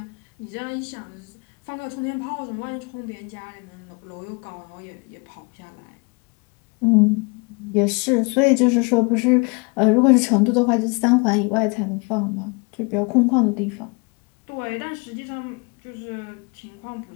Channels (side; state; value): right; quieter; 30.7 dB